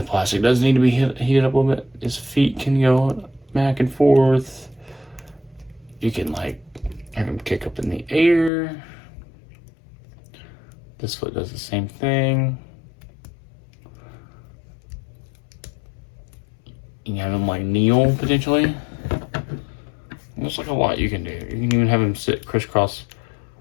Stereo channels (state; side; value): drops out; right; at 8.5 s